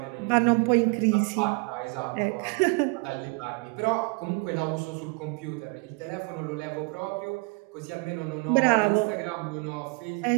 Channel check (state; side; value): quieter; left; 30.2 dB